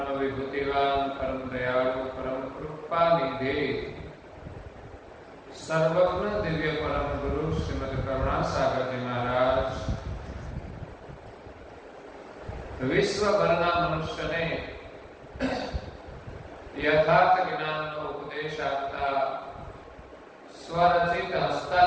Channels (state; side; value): identical; both; correlation 1.00